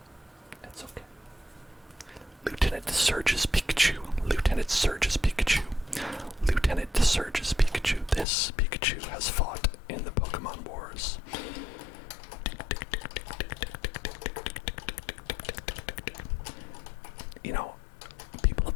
that's okay. Lieutenant Surge's Pikachu. This Pikachu has fought in the Pokemon Wars. You know, people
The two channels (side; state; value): right; drops out; at 8.2 s